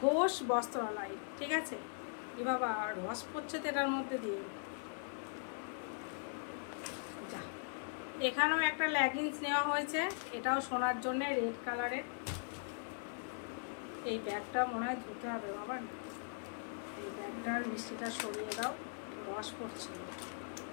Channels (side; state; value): right; silent; digital silence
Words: বস্ত্রালয়, ঠিক আছে। এ বাবা রস পড়ছে তো এটার মধ্যে দিয়ে। যা, এখানেও একটা লেগিংস নেওয়া হয়েছে, এটাও সোনার জন্য, রেড কালারের। এই ব্যাগটা মনে হয় ধুতে হবে বাবা, এই ব্যাগটার মিষ্টিটা সরিয়ে দাও, রস পড়ছে,